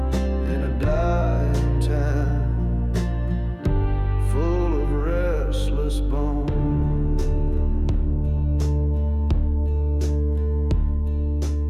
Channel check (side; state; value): both; identical; correlation 1.00